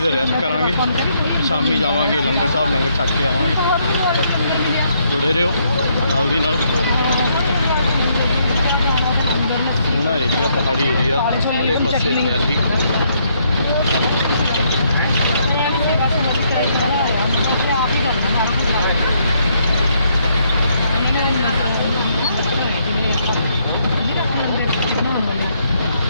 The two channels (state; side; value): inverted; both; correlation -0.72